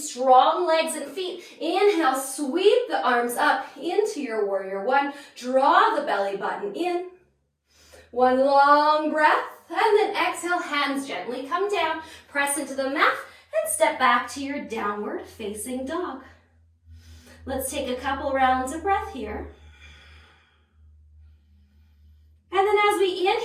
legs and feet. Inhale, sweep the arms up into your warrior one. Draw the belly button in. One long breath. And then exhale, hands gently come down. Press into the mat and step back to your downward facing dog. Let's take a couple rounds of breath here. And then as we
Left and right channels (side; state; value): both; identical; correlation 1.00